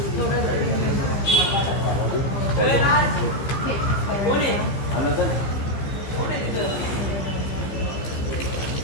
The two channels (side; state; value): right; late; 15 ms